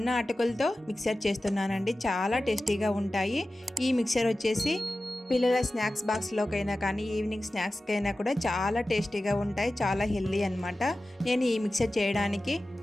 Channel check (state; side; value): normal; both; correlation 0.95